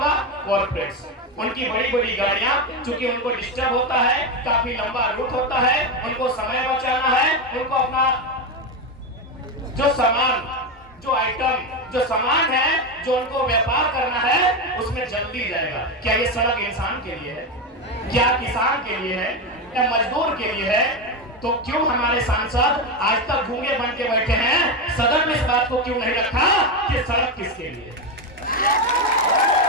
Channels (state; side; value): normal; both; correlation 0.12